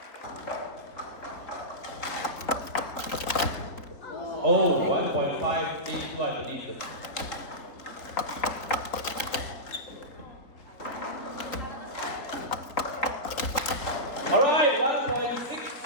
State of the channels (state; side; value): late; right; 3.8 ms